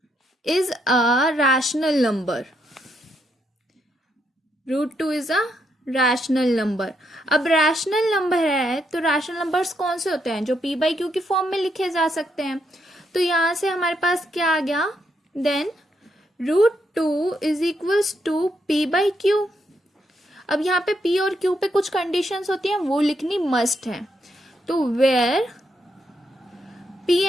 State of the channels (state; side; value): normal; both; correlation 0.78